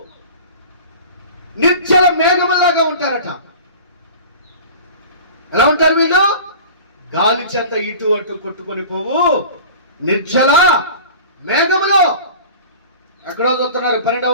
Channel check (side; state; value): both; inverted; correlation -0.39